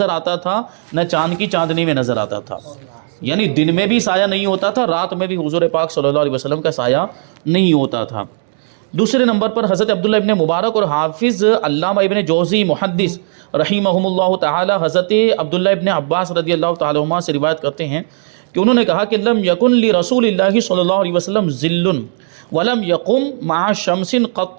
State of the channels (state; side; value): silent; left; 69 dB below the other